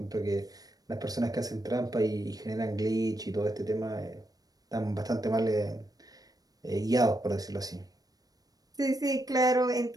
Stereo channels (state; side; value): late; left; 0.18 ms